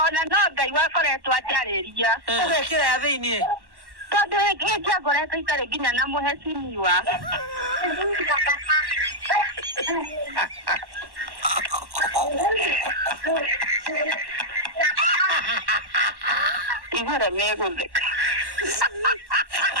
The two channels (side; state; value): left; late; 1.1 ms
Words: no Ngai wakoretwo ajariria. Ugekira ya thiini. Tondu giki akoretwo itare nginya na muhecimiwa. Igora megutheka.